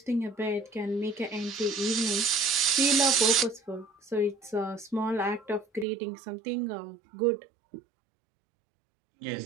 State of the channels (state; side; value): drops out; left; at 5.9 s